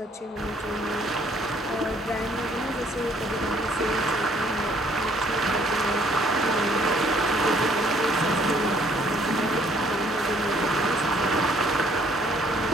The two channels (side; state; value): both; normal; correlation 0.62